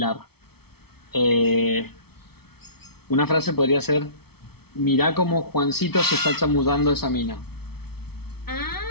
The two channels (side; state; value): right; late; 0.96 ms